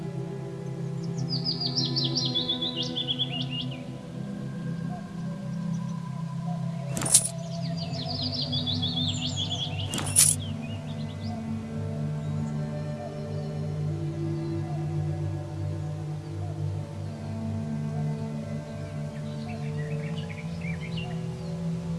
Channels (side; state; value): both; identical; correlation 1.00